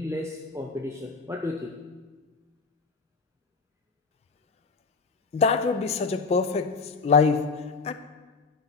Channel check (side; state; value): right; quieter; 4.4 dB